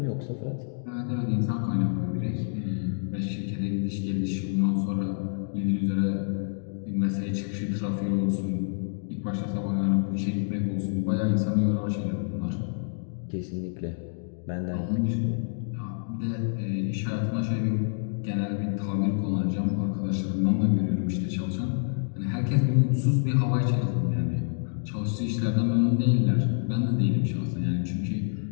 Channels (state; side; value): silent; right; digital silence